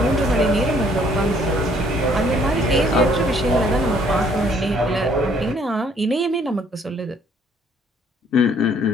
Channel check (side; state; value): both; normal; correlation 0.62